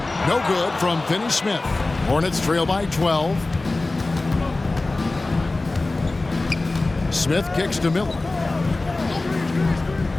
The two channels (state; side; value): quieter; right; 3.1 dB